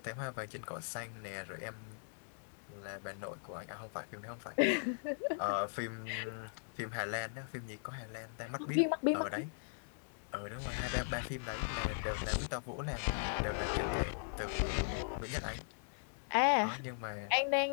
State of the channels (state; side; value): silent; right; digital silence